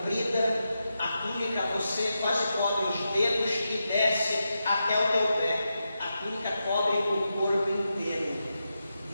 a túnica você quase cobre os dedos e desce até o teu pé. A túnica cobre o corpo inteiro.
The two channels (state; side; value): inverted; both; correlation -0.88